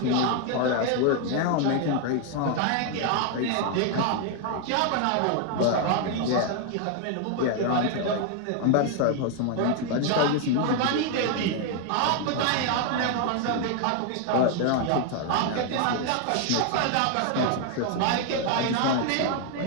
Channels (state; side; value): different; both; correlation 0.00